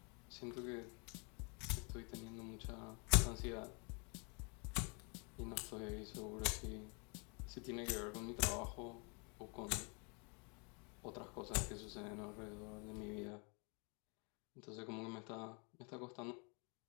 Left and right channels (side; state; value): right; quieter; 33.8 dB